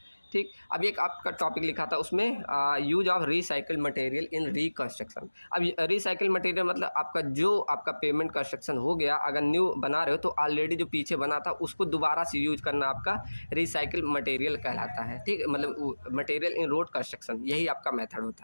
ठीक, अब एक आपका टॉपिक लिखा था उसमें use of recycled material in reconstruction. अब रिसाइकिल मटेरियल मतलब आपका जो आपका पेमेंट कंस्ट्रक्शन हो गया, अगर न्यू बना रहे हो तो ऑलरेडी जो पीछे बना था उसको दोबारा से यूज करना आपका रिसाइकिल मटेरियल कहलाता है। ठीक, मतलब मटेरियल इन रोड कंस्ट्रक्शन, यही आपका मेथड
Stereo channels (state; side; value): inverted; both; correlation -1.00